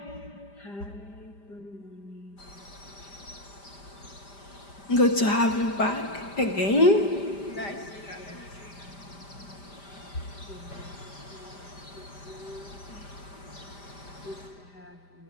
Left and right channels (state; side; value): late; right; 5.0 ms